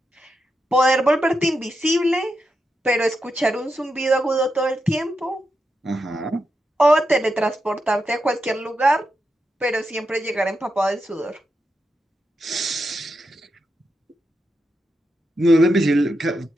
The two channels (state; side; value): normal; both; correlation 0.86